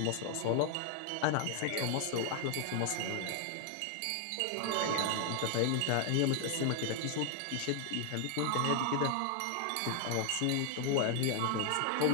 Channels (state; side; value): different; both; correlation 0.00